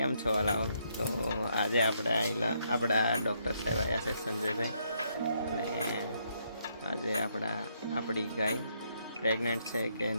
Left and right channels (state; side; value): inverted; both; correlation -0.74